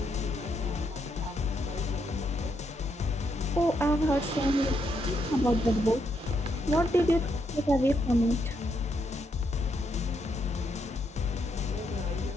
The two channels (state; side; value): normal; both; correlation 0.78